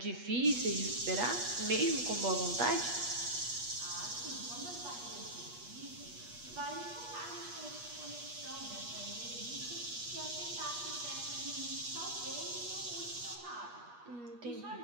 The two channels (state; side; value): late; left; 8.3 ms